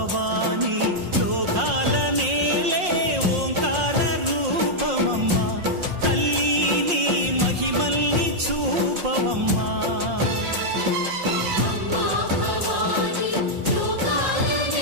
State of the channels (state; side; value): late; left; 5.6 ms